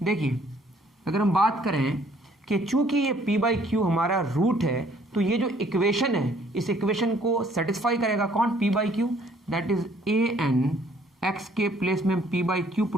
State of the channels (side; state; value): both; normal; correlation 0.61